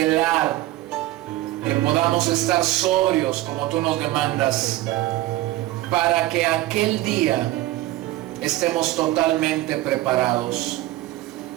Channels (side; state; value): left; quieter; 16.3 dB